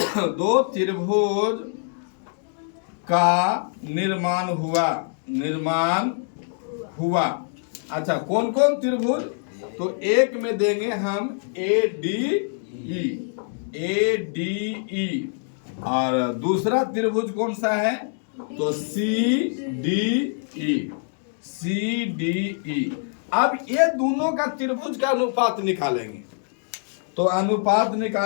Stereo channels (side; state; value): right; silent; digital silence